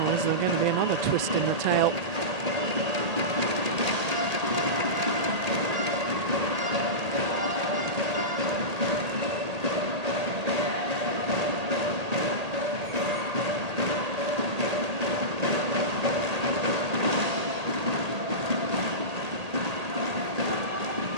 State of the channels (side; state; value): left; late; 1.8 ms